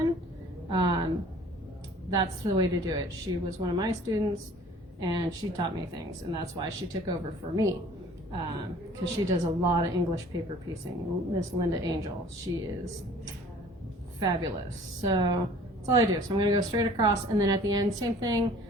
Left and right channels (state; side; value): normal; both; correlation 0.51